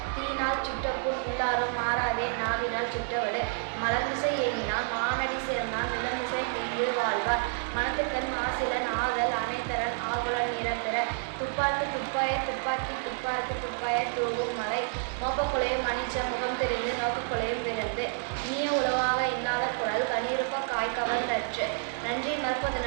தீயினால் சுட்டபுண் உள்ளாரும் மாறாதே நாவினால் சுட்டவடு. மலர்மிசை ஏங்கினான் மானடி சேர்ந்தான் நிலமிசை நீண்டு வாழ்வார். மனத்துக்கண் மாசிலன் ஆதல் அனைத்தரன் ஆகுலன் நிறப்பெற. துப்பாக்கு துப்பாய துப்பாக்கி துப்பாக்கு துப்பாய தூவும் மலை. மோப்பக்குலையும் மன்னிச்ச முகம் தெரிந்து நோக்கக்குலையும் விருந்து. இனிய உளவாக இன்னாத குரல் கனியிருப்ப காய் கவர்ந்தற்று. நன்றி மறப்பது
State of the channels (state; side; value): silent; left; 58 dB below the other